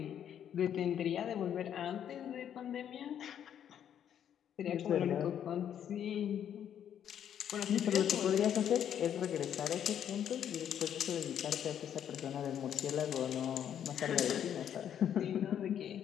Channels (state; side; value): quieter; right; 9.5 dB